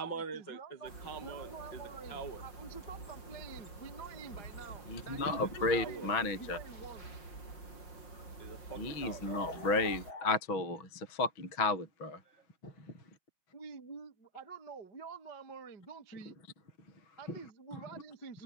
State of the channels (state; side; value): late; right; 5.6 ms